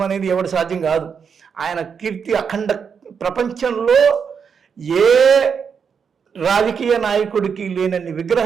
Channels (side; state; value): left; quieter; 6.5 dB